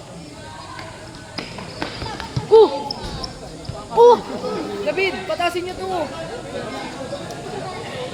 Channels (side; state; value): both; identical; correlation 1.00